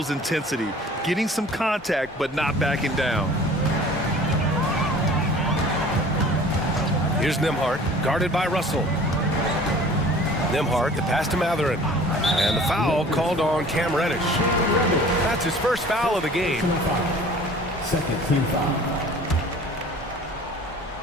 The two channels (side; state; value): both; normal; correlation 0.47